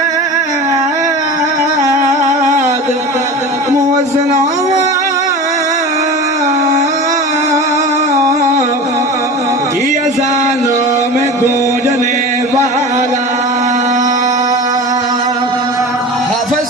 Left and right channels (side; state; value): both; normal; correlation 0.33